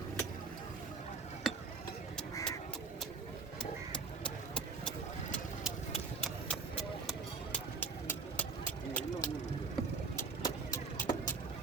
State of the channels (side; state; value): left; quieter; 4.7 dB